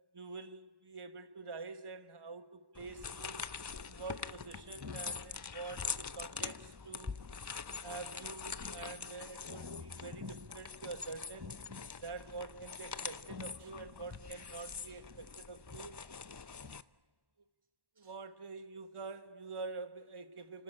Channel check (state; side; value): late; left; 1.1 ms